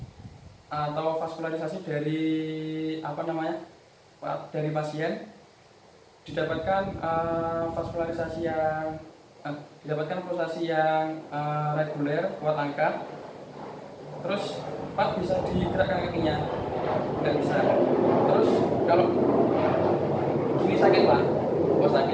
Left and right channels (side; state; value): both; identical; correlation 1.00